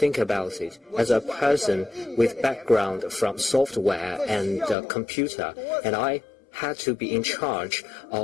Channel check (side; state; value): right; drops out; at 4.8 s